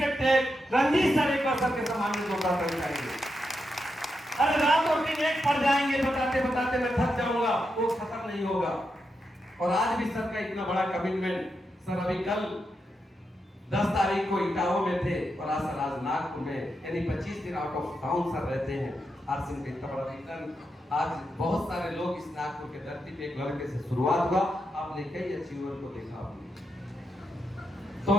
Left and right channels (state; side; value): normal; both; correlation 0.85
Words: रणजीत सर। एक बार सर के सामने जोरदार ताली चाहिए। अरे रात और दिन एक पढ़ जाएंगे, बताते बताते मैं थक जाऊंगा, वो खत्म नहीं होगा। और आज भी सर का इतना बड़ा कमिटमेंट, सर अभी कल 10 तारीख को इटावा में थे, और आज सर आज नागपुर में, यानी 25 दिन आउट ऑफ टाउन सर रहते हैं। आरसीएम का इतना बड़ा रिटर्न, आज बहुत सारे लोग इस नागपुर के धरती पे एक लड़के से शुरुआत हुआ, आपने कई अचीवर को देखा आपने। तो